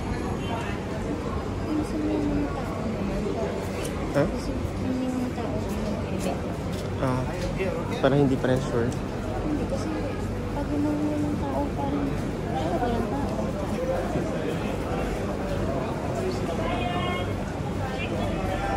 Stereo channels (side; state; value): both; identical; correlation 1.00